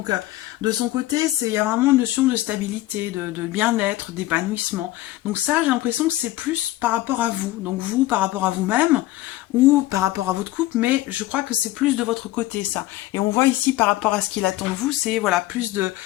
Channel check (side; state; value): right; quieter; 16.4 dB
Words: de son côté, il y a vraiment une notion de stabilité, de bien-être, d'épanouissement. Donc ça, j'ai l'impression que c'est plus par rapport à vous, donc vous par rapport à vous-même, ou par rapport à votre couple, mais je crois que c'est plus de votre côté, ça. Et on voit ici, par rapport à ce qu'il attend de vous, c'est voilà, plus de